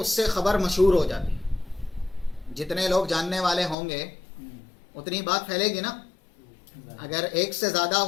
سے خبر مشہور ہو جاتی. جتنے لوگ جاننے والے ہوں گے اتنی بات پھیلے گی نا. اگر 1 سے زیادہ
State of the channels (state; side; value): drops out; right; at 3.8 s